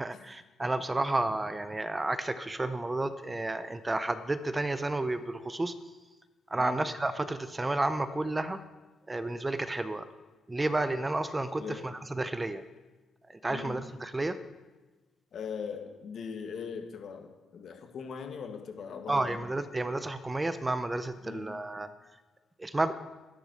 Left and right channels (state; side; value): normal; both; correlation 0.95